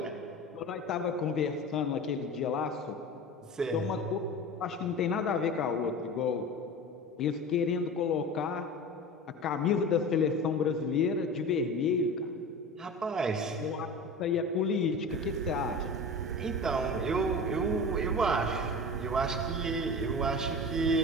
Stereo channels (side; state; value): both; normal; correlation 0.33